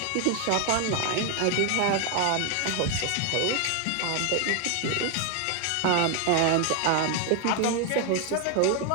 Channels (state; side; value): different; both; correlation 0.01